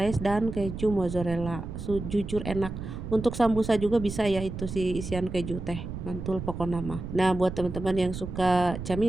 dan keju mozzarella. Jujur enak. Untuk sambusa juga bisa ya itu si isian keju teh. Mantul pokoknya mah. Nah, buat teman-teman yang suka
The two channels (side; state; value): right; noise; rumble, 8 dB below the sound